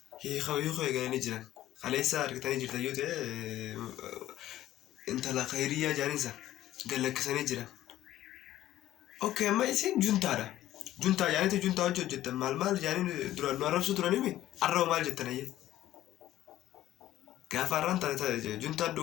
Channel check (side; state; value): right; quieter; 13.8 dB